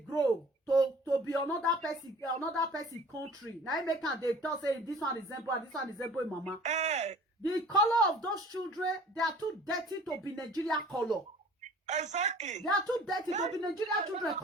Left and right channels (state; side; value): normal; both; correlation 0.47